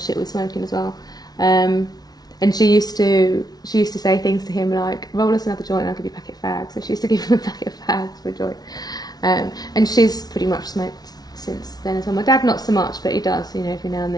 with smoking as well. And she used to say things to him like, roll us another joint and I'll give you a packet of fags. So she used to give him a packet of fags for a joint. And she's pretty much smoked since then as well. My dad not so much, but he does, every now and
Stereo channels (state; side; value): late; right; 0.19 ms